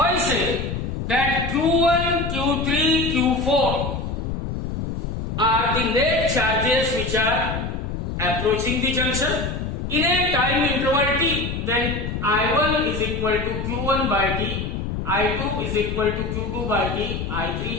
say that Q1, Q3, Q4 are the net charges which are approaching the junction in a time interval t, then I1 is equal to Q1 by t, I2 is equal to Q2 by t,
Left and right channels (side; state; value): left; noise; rumble, 4 dB below the sound